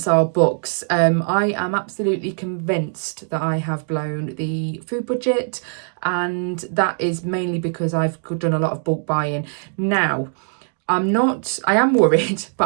our books. I am absolutely convinced that I have blown the food budget, and that is mainly because I've done a lot of bulk buying. Now, I am worried,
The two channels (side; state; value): left; silent; 61 dB below the other